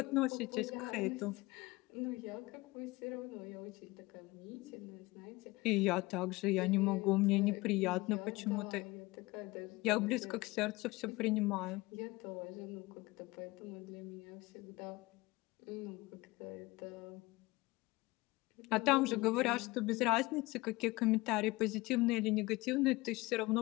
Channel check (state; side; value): quieter; right; 21.7 dB